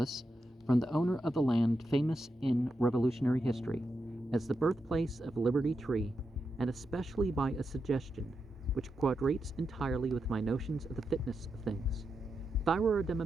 from the owner of the land famous in Revolutionary history as the birthplace of Liberty Tree, and especially by a suggestion which quadrates entirely with my notions of the fitness of things. If I were a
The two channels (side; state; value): both; normal; correlation 0.86